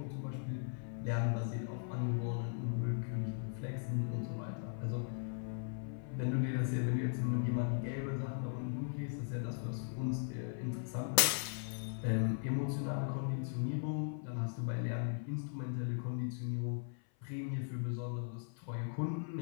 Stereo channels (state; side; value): silent; right; 52 dB below the other